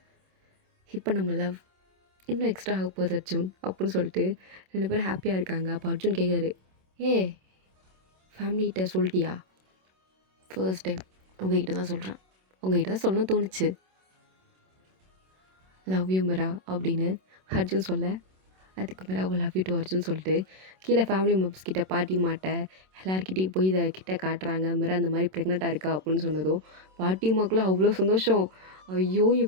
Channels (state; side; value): late; left; 27 ms